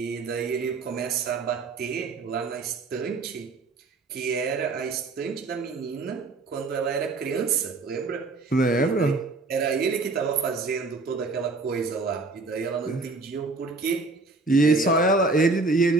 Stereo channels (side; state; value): left; quieter; 3.6 dB